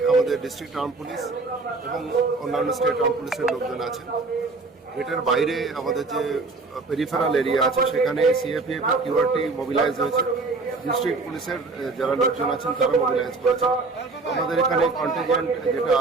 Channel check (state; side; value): quieter; left; 3.7 dB